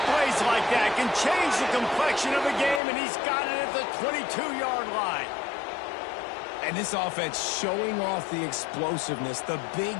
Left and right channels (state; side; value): drops out; right; at 2.8 s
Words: plays like that can change the complexion of a game, and he's got it at the 22-yard line. And this offense showing off the explosiveness, the big